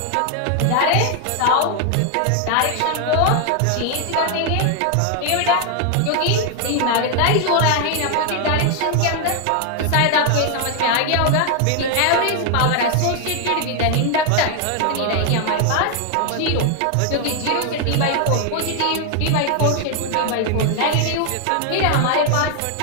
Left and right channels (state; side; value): different; both; correlation 0.00